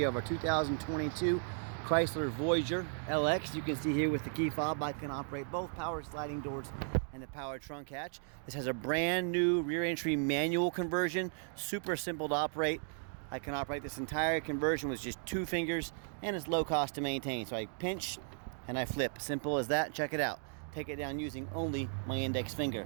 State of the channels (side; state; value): left; silent; 54 dB below the other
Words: of our 2022 Chrysler Voyager LX. You can see here with the key fob I can operate both power sliding doors and the power trunk hatch. This has a brand new rear entry manual conversion, super simple to operate. I can operate this entire conversion with just 2 fingers, and it's low cost to maintain. So I pinch and I flip, simple as that. Check it out. Take it down using only my index finger.